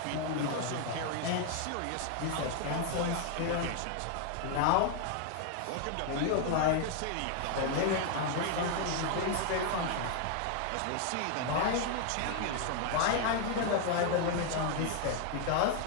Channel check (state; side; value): different; both; correlation 0.00